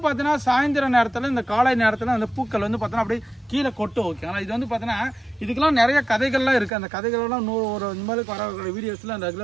பார்த்தீங்கன்னா சாயந்தர நேரத்தில் இந்த காலை நேரத்தில் அந்த பூக்கள் வந்து பார்த்தீங்கன்னா அப்படியே கீழே கொட்டும் ஓகேங்களா. இது வந்து பார்த்தீங்கன்னா இதுக்கெல்லாம் நிறைய கதைகள்லாம் இருக்குது. அந்த கதைகளெல்லாம் ஒரு இந்த மாதிரி வர வீடியோஸில் அந்த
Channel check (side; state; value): left; drops out; at 6.7 s